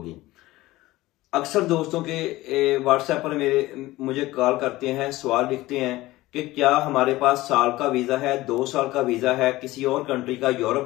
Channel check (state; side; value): quieter; right; 18.0 dB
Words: अक्सर दोस्तों के व्हाट्सएप पर मुझे कॉल करते हैं, सवाल लिखते हैं कि क्या हमारे पास साल का वीजा है, 2 साल का वीजा है, किसी और कंट्री का, यूरोप